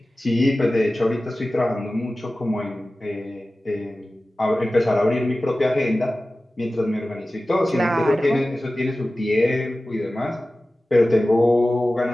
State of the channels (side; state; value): both; normal; correlation 0.96